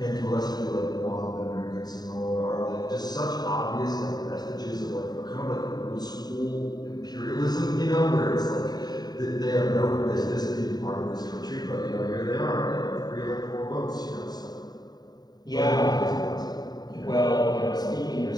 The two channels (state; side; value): late; right; 0.20 ms